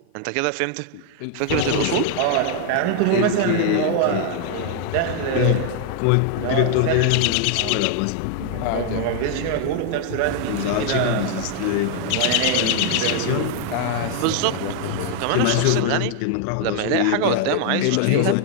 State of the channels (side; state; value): both; different; correlation 0.00